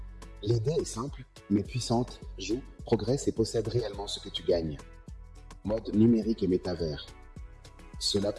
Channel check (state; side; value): identical; both; correlation 1.00